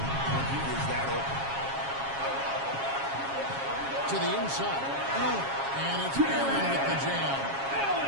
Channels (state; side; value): late; left; 7.3 ms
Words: when he is that open. To the inside. And it's Allen with the jam.